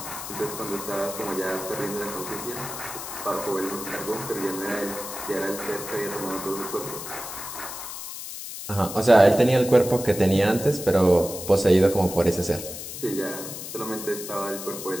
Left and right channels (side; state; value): left; noise; hiss, 9 dB below the sound